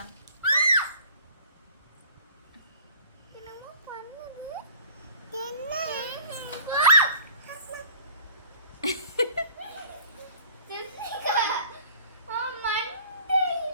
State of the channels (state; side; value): inverted; both; correlation -0.49